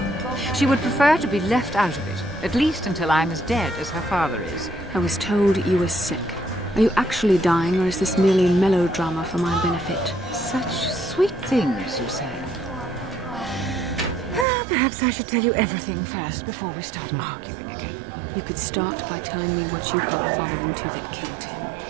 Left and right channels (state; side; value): drops out; left; at 14.5 s